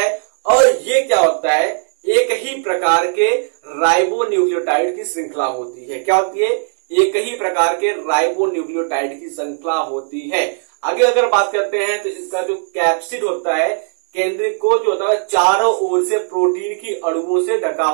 और ये क्या होता है? एक ही प्रकार के राइबोन्यूक्लियोटाइड की श्रृंखला होती है। क्या होती है? एक ही प्रकार के राइबोन्यूक्लियोटाइड की श्रृंखला होती है। आगे अगर बात करते हैं तो इसका जो कैप्सिड होता है, केंद्रिक को जो होता है चारों ओर से प्रोटीन की अणुओं से ढका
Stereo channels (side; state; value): left; silent; digital silence